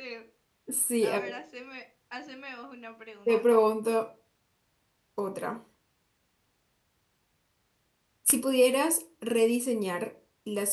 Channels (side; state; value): both; identical; correlation 1.00